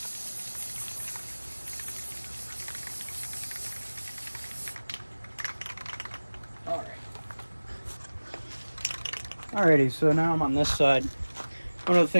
Alrighty, so now I'm on this side. One of the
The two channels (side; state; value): both; inverted; correlation -1.00